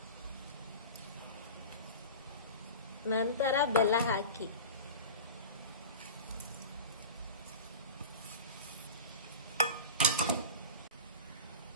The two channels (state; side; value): inverted; both; correlation -0.32